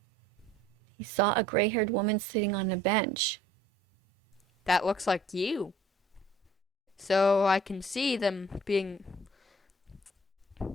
He saw a gray-haired woman sitting on a bench. That looks like you. So I can see them being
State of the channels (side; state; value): both; normal; correlation 0.54